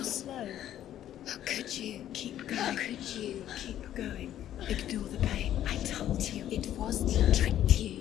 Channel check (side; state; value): right; quieter; 11.7 dB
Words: slow. How could you? Keep going. How could you? Keep going. Ignore the pain. I told you it was he tricked